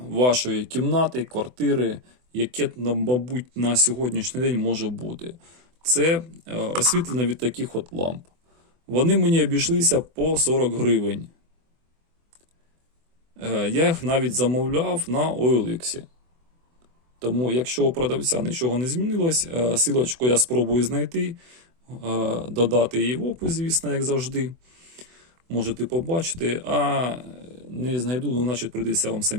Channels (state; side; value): late; left; 24 ms